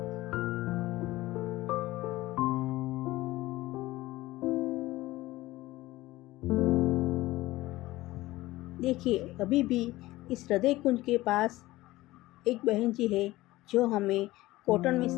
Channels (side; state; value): right; quieter; 18.0 dB